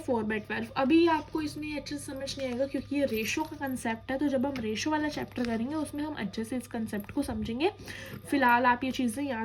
अभी आपको इसमें अच्छे से समझ नहीं आएगा क्योंकि ये रेशो का कंसेप्ट है, तो जब हम रेशो वाला चैप्टर करेंगे उसमें हम अच्छे से इस कंसेप्ट को समझेंगे. फिलहाल आप ये चीज़ें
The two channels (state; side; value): identical; both; correlation 1.00